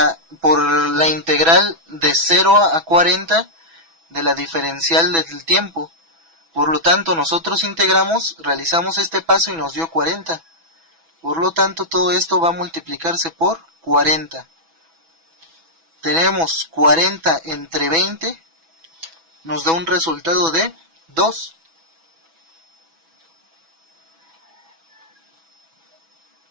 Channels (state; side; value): late; left; 6.1 ms